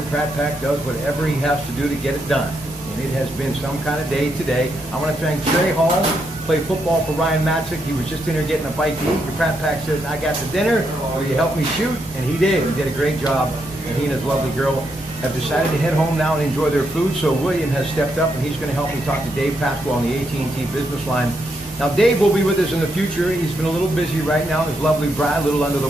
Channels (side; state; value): both; normal; correlation 0.80